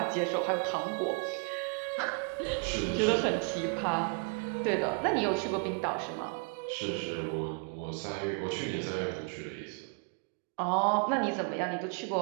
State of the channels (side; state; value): left; quieter; 37.7 dB